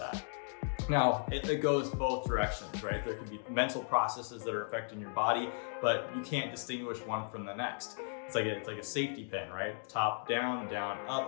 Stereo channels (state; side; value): silent; right; 54 dB below the other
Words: Now, it goes both directions, right? There could be mental processes that are affecting your body, but you can't distinguish one from the next. It's like a safety pin, right? Top down, down